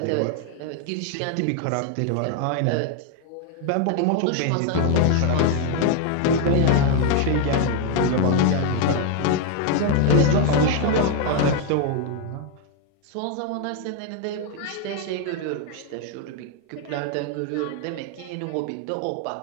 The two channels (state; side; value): different; both; correlation 0.01